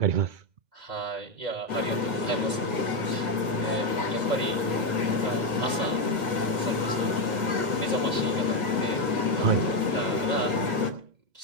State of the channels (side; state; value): left; late; 2.0 ms